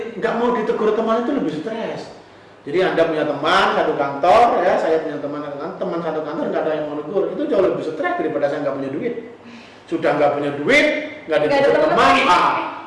nggak mau ditegur teman itu lebih stres. Jadi Anda punya teman satu kantor, ya saya punya teman satu kantor nggak ada yang mau negur, itu jauh lebih stres daripada saya nggak punya duit. Sudah nggak punya duit, nggak ditegur teman,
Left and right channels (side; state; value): both; identical; correlation 1.00